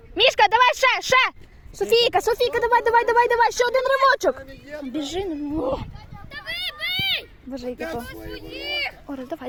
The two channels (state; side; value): identical; both; correlation 1.00